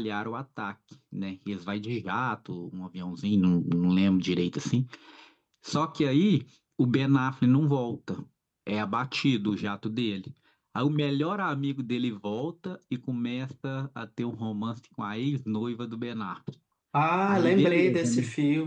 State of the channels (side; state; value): both; identical; correlation 1.00